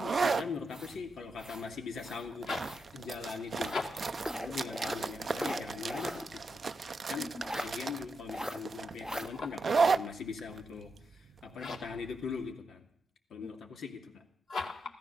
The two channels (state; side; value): normal; both; correlation 0.84